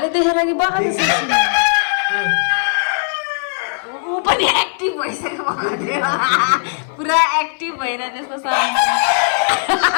देखेर कि बगान ऊ पनि एक्टिभ भइसक्यो पुरा एक्टिभ भएर त्यस्तो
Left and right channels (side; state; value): right; silent; 56 dB below the other